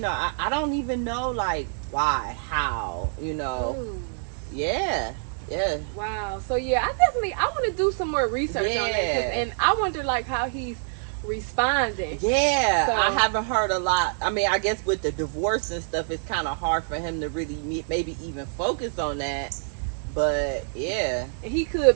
I don't even know, like, why, how, Ooh. Yeah. Wow. So, I want to do some more research on that, and I wonder, like, how he's responding. Yeah, so, I haven't heard a lot. I mean, I guess with the divorce and stuff, it's kind of hard for him to really maybe even focus on that. But yeah, he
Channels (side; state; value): left; silent; 61 dB below the other